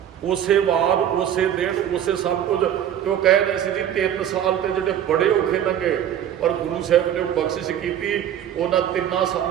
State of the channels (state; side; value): quieter; left; 10.3 dB